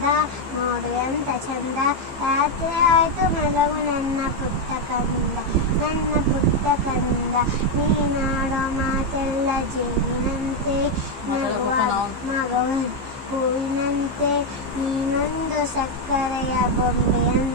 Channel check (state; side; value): late; left; 15 ms